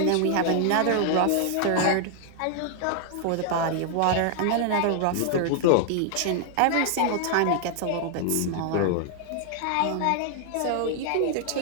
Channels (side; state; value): both; different; correlation 0.00